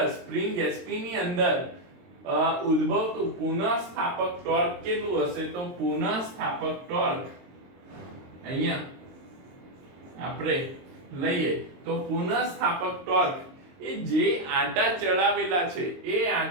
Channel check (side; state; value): left; late; 23 ms